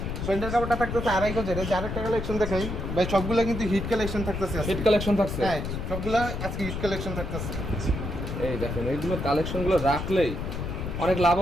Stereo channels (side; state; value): left; noise; rumble, 5 dB below the sound